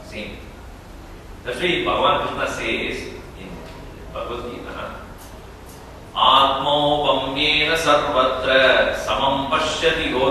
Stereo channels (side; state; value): both; identical; correlation 1.00